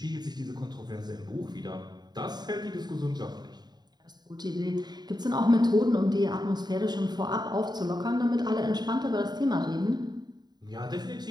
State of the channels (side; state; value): left; late; 0.20 ms